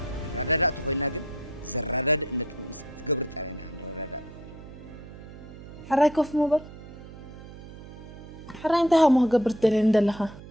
الرداد تخوينا جن زرداد إنك تقبرت علينا عن الرداد حراي كوف موبل حراي انتهى ما قبرت دلين دلها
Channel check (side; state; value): right; noise; hum, 15 dB below the sound